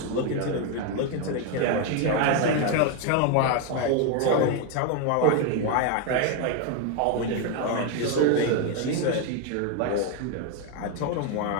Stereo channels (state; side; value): different; both; correlation 0.02